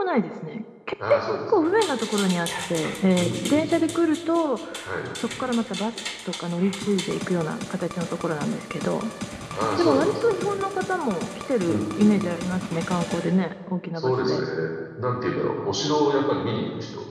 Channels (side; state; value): both; identical; correlation 1.00